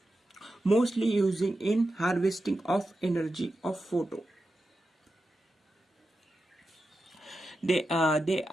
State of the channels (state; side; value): normal; both; correlation 0.90